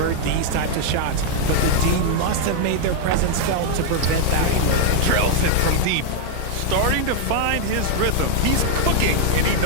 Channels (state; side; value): different; both; correlation 0.00